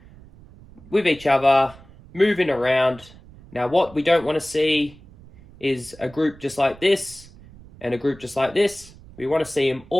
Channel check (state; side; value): noise; right; rumble, 22 dB below the sound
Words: with each other, moving around. Now, what we don't want to see is a group just like this and a group just like this. We want to see them